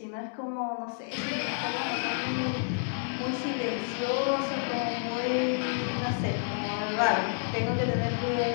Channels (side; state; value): right; silent; digital silence